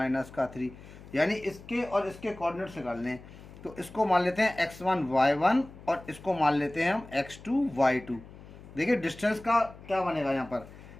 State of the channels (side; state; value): left; noise; hum, 18 dB below the sound